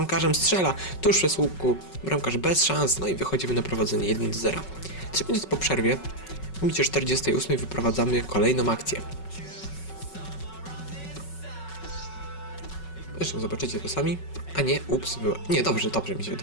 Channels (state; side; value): late; right; 5.4 ms